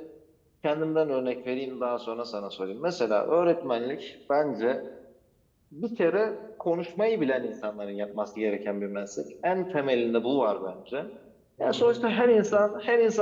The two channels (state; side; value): identical; both; correlation 1.00